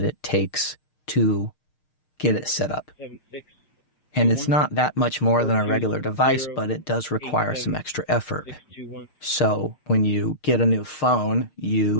it takes to get it set up. And it's not that much more than a regular device, but it does require some extra effort. So when you get a new phone,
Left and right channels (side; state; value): right; late; 6.5 ms